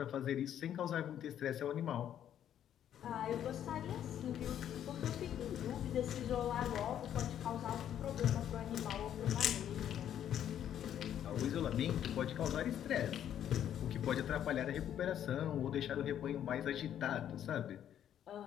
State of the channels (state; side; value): quieter; right; 10.2 dB